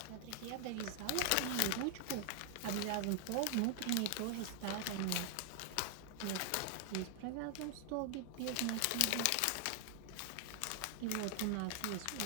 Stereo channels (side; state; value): both; different; correlation 0.00